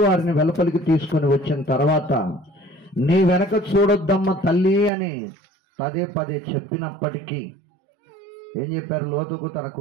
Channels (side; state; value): left; drops out; at 4.9 s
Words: వారిని వెలుపలికి తీసుకొని వచ్చిన తర్వాత నీ వెనక చూడొద్దమ్మ తల్లి అని పదే పదే చెప్పినప్పటికీ ఏం చెప్పారు లోతుకు, తన